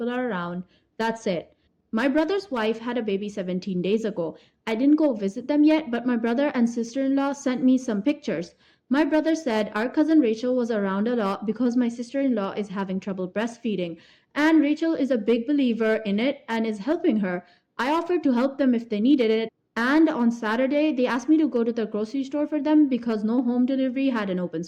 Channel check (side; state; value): both; identical; correlation 1.00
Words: are around. That's it. My brother's wife had a baby 17 days ago. I didn't go visit them yet, but my brother and sister-in-law sent me some pictures. My brother said our cousin Rachel was around a lot because my sister-in-law is having trouble breastfeeding, and Rachel is a big believer in it and is helping her. I offered to help them if they needed it, and on Saturday they asked me to go to the grocery store for them because no home delivery had an open